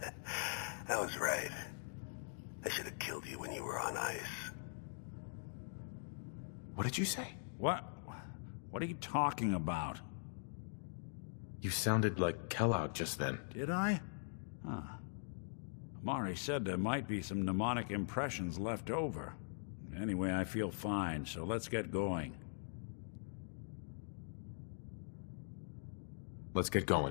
I was right. I should have killed you when you were on ice. What did you say? What? What are you talking about? You sounded like Kellogg just then. Did I? Huh. Amari said there might be some mnemonic impressions left over. Anyway, I feel fine, so let's get going. Let's get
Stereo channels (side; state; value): right; silent; digital silence